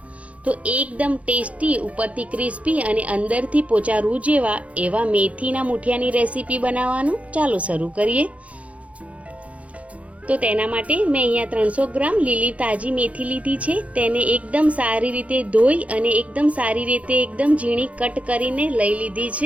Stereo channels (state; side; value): late; left; 0.065 ms